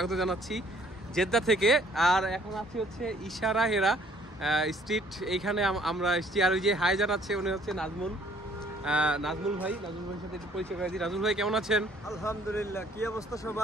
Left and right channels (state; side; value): normal; both; correlation 0.61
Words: জানাচ্ছি জেদ্দা থেকে। আর এখন আছি হচ্ছে ইশারা হেরা স্ট্রিট, এইখানে আমরা এসছি। আর ওই যে হাই জানাচ্ছে উনি হচ্ছে নাজমুল ভাই। নাজমুল ভাইয়ের সাথে একটু পরিচয় করে দিই। নাজমুল ভাই কেমন আছেন? আলহামদুলিল্লাহ। কি অবস্থা